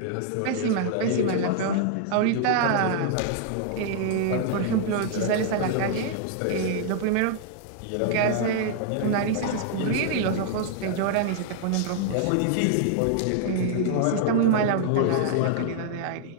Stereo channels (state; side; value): different; both; correlation 0.00